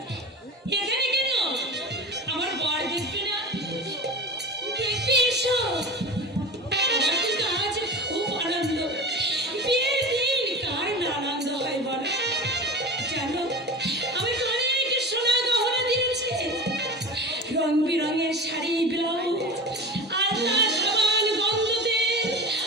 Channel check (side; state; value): both; normal; correlation 0.31